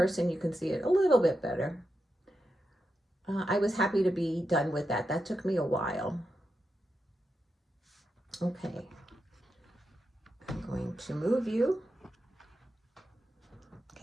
you can see it a little bit better. I was happy to be done with that. That took me a while. Okay, I'm going to move you.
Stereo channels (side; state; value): both; normal; correlation 0.87